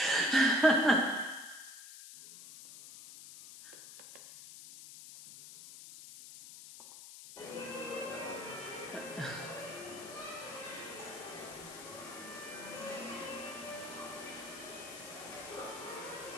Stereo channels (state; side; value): noise; left; hiss, 13 dB below the sound